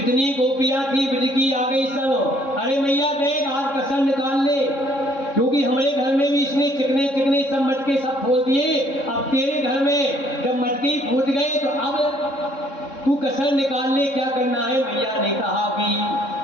गोपियां थी ब्रज की आ गई सब। अरे मैया देख आज कसम निकाल ले, क्योंकि हमारे घर में भी इसने चिकने चिकने सब मटके सब फोड़ दिए। अब तेरे घर में जब मटके फूट गए तो अब तू कसर निकाल ले, क्या करना है। मैया ने कहा कि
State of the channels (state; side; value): late; right; 3.7 ms